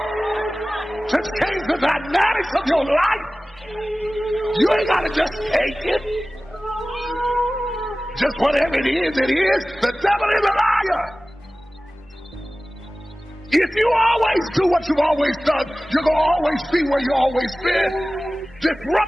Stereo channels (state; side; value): normal; both; correlation 0.97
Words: to change the dynamics of your life. You ain't got to just take it. Just whatever it is, it is. The devil is a liar. If you always do what you've always done, you're going to always be where you've always been.